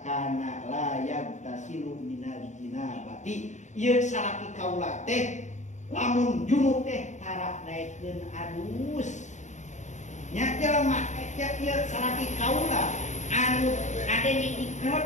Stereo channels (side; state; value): right; late; 0.34 ms